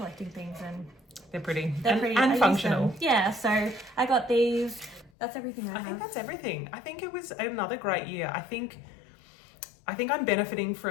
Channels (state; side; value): drops out; right; at 5.1 s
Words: things, and They're pretty. they're pretty. And I use functional. them. Yeah, so I got these. That's everything I I have. think that's everything. I think it was another great year. I think I'm benefiting